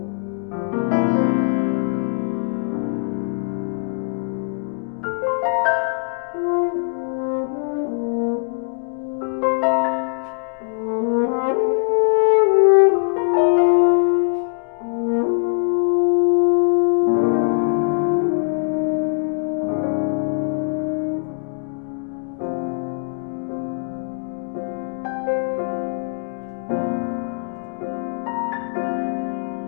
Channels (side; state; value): right; silent; digital silence